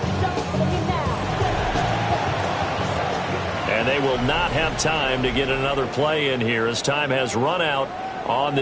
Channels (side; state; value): both; identical; correlation 1.00